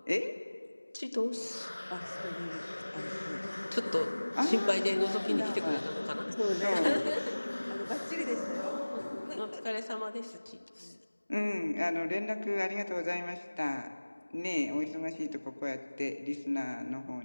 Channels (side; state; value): both; inverted; correlation -1.00